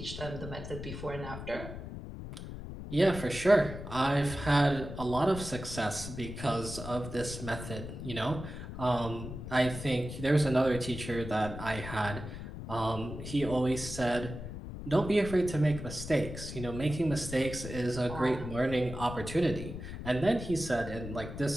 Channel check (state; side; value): noise; left; rumble, 9 dB below the sound